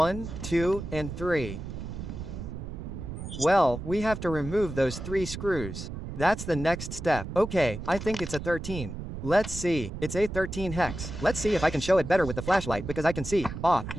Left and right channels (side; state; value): right; noise; rumble, 8 dB below the sound